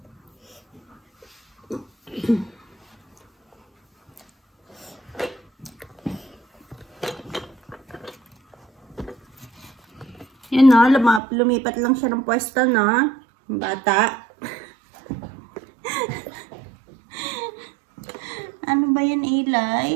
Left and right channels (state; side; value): drops out; left; at 11.2 s